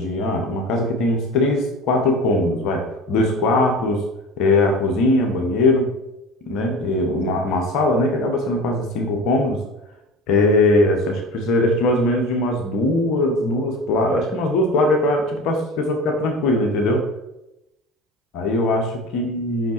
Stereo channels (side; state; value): both; normal; correlation 0.33